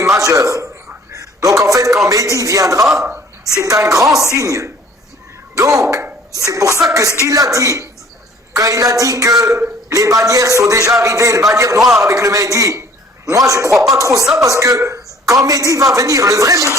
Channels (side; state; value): both; normal; correlation 0.54